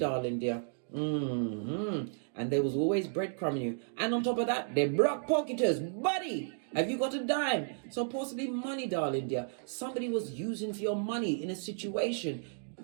dear. And there was always breadcrumbing you, and on top of that, they're block pocketers. Buddy, have you got a dime? So possibly money, darling dear. Somebody was using for your money in a situation.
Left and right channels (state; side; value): silent; left; digital silence